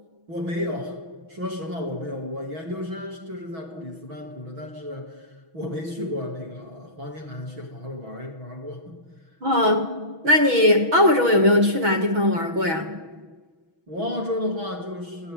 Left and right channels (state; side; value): late; left; 6.2 ms